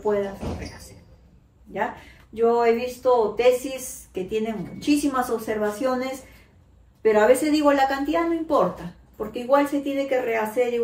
rehacer. ¿Ya? Yo he visto tesis que tienen muchísimas observaciones, pero a veces digo, la cantidad no importa, porque igual se tiene que rehacer,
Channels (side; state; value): both; identical; correlation 1.00